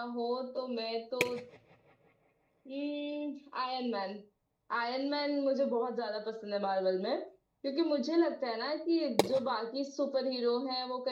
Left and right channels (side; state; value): both; identical; correlation 1.00